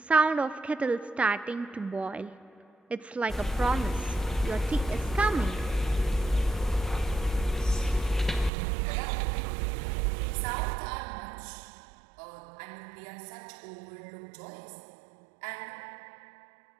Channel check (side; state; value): left; drops out; at 8.5 s